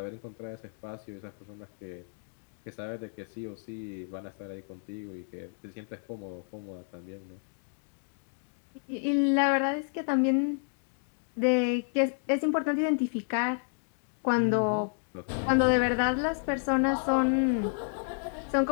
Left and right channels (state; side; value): silent; right; digital silence